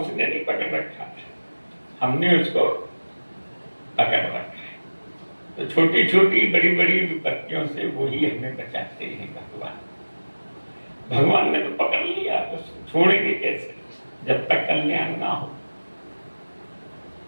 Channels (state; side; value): inverted; both; correlation -1.00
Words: नहीं पकड़ रखा था, हमने उसको पकड़ रखा है। तो छोटी छोटी बड़ी बड़ी विपत्तियों से वही हमें बचाते हैं भगवान। भगवान ने तो पकड़ लिया, तो छोड़ेंगे कैसे जब तक कल्याण ना हो।